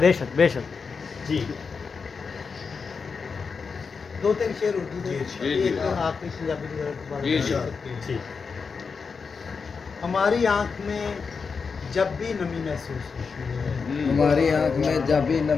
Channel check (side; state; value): right; quieter; 5.3 dB